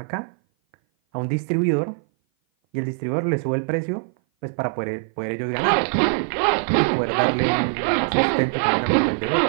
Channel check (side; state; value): left; silent; 57 dB below the other